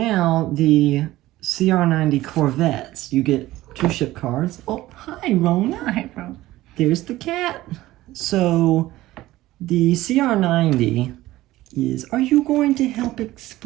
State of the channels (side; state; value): left; quieter; 16.6 dB